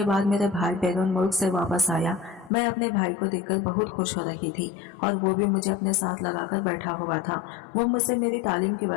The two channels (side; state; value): right; drops out; at 2.5 s